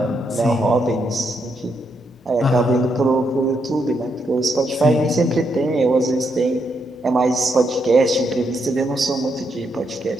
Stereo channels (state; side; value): normal; both; correlation 0.79